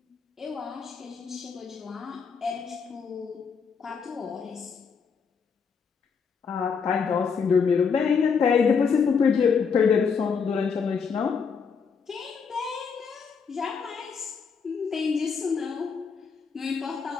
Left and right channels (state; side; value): quieter; right; 5.9 dB